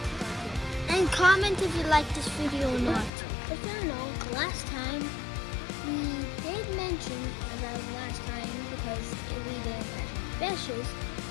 And comment if you like this video or not. If you don't know, last time we did mention about last time because we didn't catch any fishes.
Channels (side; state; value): right; drops out; at 3.1 s